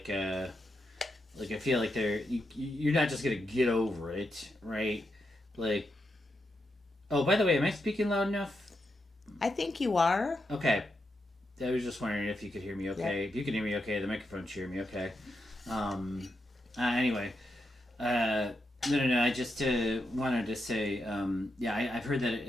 you're not just gonna get over it, right? Like, oh, by the way, am I speaking loud enough? I think you are. Okay. I was just wondering if you could hear me okay. Yep. If you can hear me okay, the microphone should hear me okay. Anyway, No. I just wanted to say, yeah, I've heard that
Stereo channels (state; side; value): normal; both; correlation 0.84